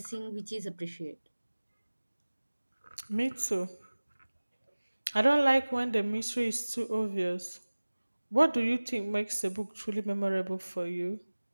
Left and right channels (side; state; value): both; inverted; correlation -1.00